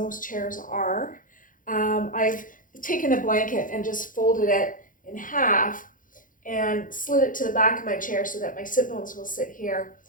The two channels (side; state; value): right; late; 0.39 ms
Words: chairs are, I've taken a blanket and just folded it in half and slid it to the back of my chair so that my sit bones will sit here,